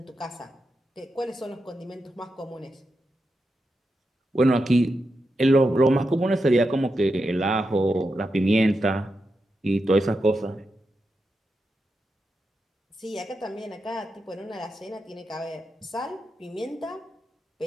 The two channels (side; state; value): both; normal; correlation 0.87